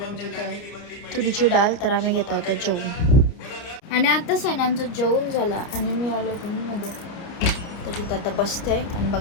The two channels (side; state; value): right; late; 29 ms